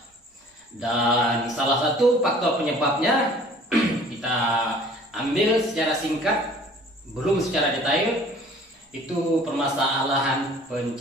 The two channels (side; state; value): both; normal; correlation 0.51